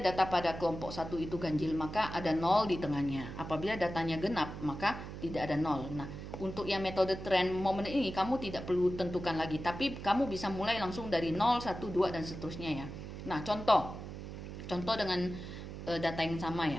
pada kelompok 1 itu ganjil, maka ada 0 di tengahnya. Apabila datanya genap, maka tidak ada 0. Nah, untuk yang metode trend moment ini kamu tidak perlu tentukan lagi, tapi kamu bisa mulai langsung dari 0, 1, 2, dan seterusnya ya. Nah, contoh dengan data yang sama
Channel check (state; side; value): noise; right; hum, 9 dB below the sound